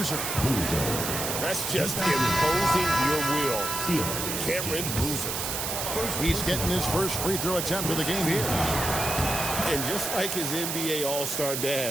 That's just imposing your will. Cameron Boozer. He's getting his first free throw attempt of the game here. And just like his NBA All-Star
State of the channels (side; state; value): right; noise; hiss, 2 dB below the sound